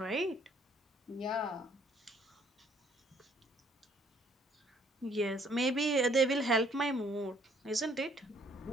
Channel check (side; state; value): both; normal; correlation 0.62